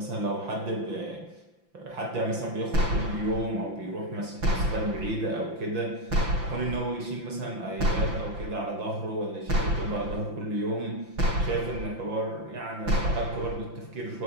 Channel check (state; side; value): late; left; 5.9 ms